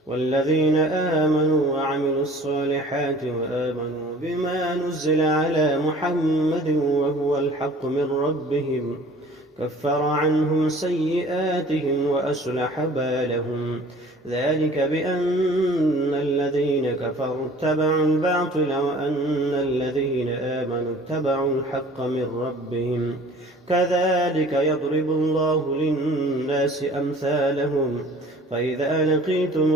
والذين آمنوا وعملوا الصالحات وآمنوا بما نزل على محمد وهو الحق من ربهم كفر عنهم سيئاتهم وأصلح بالهم ذلك بأن الذين كفروا اتبعوا الباطل وأن الذين آمنوا اتبعوا الحق من ربهم كذلك يضرب الله للناس أمثالهم فإذا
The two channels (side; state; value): both; normal; correlation 0.48